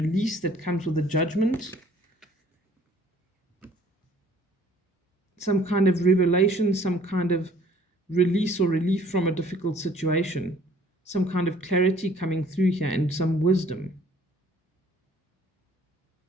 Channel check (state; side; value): normal; both; correlation 0.57